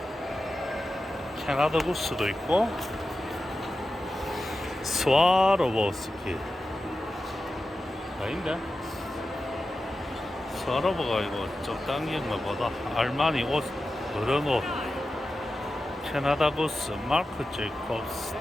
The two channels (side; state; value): both; normal; correlation 0.92